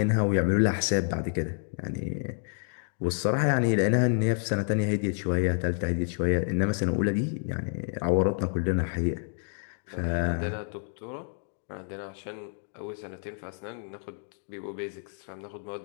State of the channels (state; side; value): silent; right; 59 dB below the other